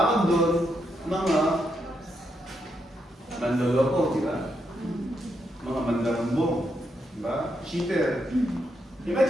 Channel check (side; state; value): both; normal; correlation 0.81